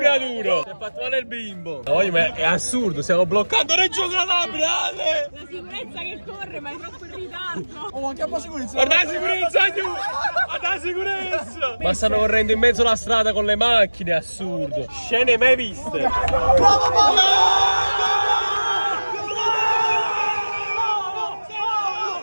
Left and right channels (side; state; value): both; inverted; correlation -1.00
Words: Si è fatto male il bimbo. No, ma è assurdo, stiamo bloccando Reggio Calabria. La sicurezza che corre, ma è troppo in ritardo. Oh, anche a po' sicurezza. Guarda la sicurezza, guarda la sicurezza. Ma stanno correndo in mezzo alla strada con le macchine, assurdo. Scene mai viste.